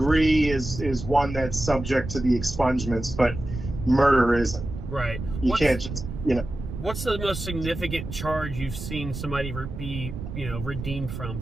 is one that's subject to the expungements, but murder isn't. Right. You can't just, What's the most significant charge you've seen somebody be, redeemed from,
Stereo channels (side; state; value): right; noise; rumble, 8 dB below the sound